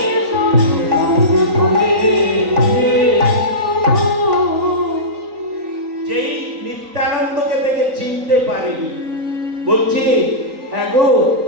যেই নিত্যানন্দকে দেখে চিনতে পারেনি, বলছি হ্যাঁ গো,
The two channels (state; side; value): late; left; 3.9 ms